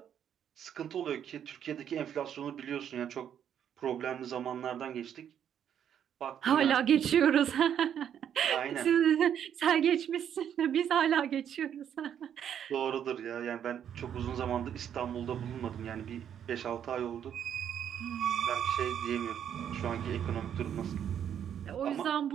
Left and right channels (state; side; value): quieter; left; 9.2 dB